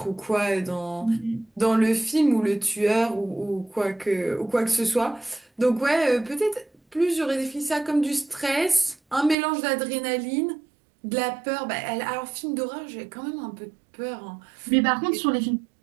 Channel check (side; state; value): left; drops out; at 9.3 s